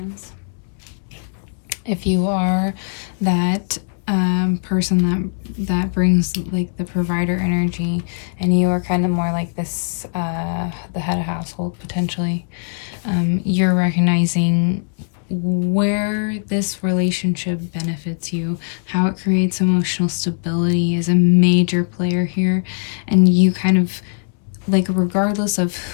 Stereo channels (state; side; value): silent; right; 65 dB below the other